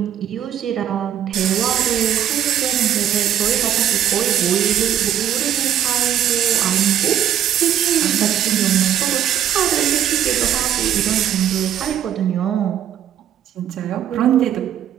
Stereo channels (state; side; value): quieter; left; 10.3 dB